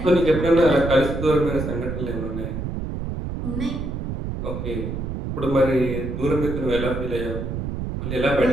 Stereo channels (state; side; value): noise; right; rumble, 4 dB below the sound